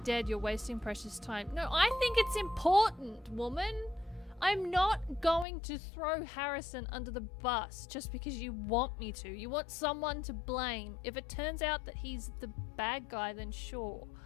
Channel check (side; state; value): right; drops out; at 5.5 s